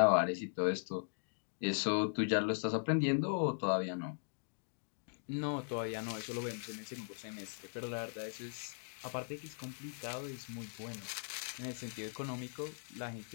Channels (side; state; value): right; silent; digital silence